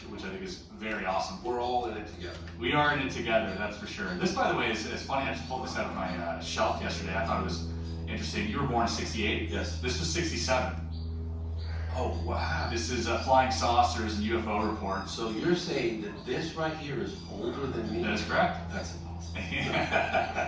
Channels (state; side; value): identical; both; correlation 1.00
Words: I think is very awesome. We're all in it together. We are in it together, that's for sure. This, by the way, is funny. I just pulled this out of my shelf yesterday. I thought it was interesting. You were born in '68. Yes. This was '67. Oh, wow. This is flying saucers and UFO reports. So you're saying that this right here is older than me? That is correct. That's impossible.